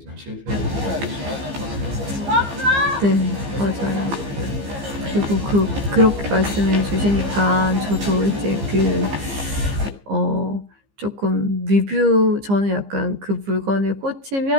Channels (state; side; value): late; left; 15 ms